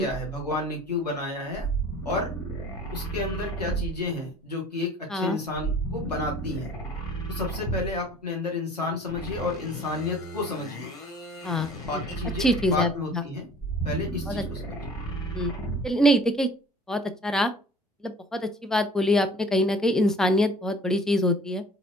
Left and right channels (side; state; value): both; normal; correlation 0.48